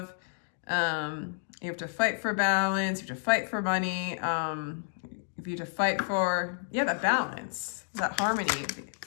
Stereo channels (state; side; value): silent; right; digital silence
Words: you have to fight for balance, you have to fight for money, you have to fight for, that balance, that harmony,